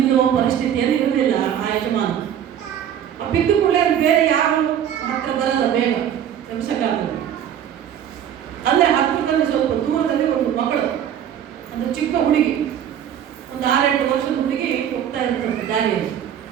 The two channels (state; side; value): quieter; left; 9.7 dB